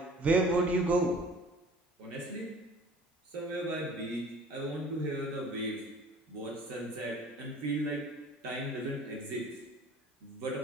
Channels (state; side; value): normal; both; correlation 0.48